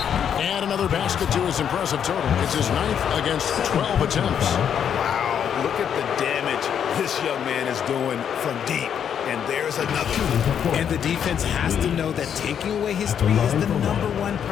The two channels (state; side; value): quieter; right; 8.5 dB